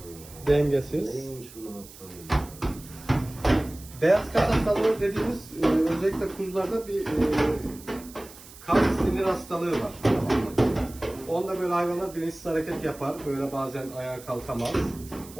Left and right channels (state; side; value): noise; right; hiss, 19 dB below the sound